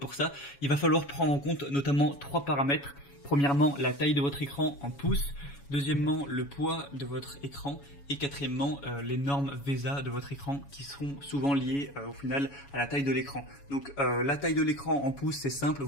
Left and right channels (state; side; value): late; right; 7.1 ms